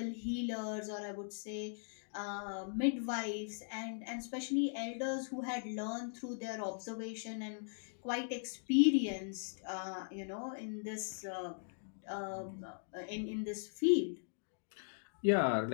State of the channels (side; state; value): right; silent; digital silence